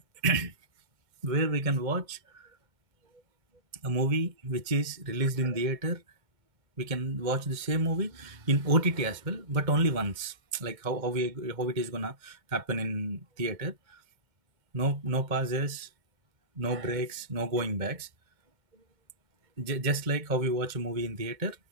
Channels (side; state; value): left; late; 2.1 ms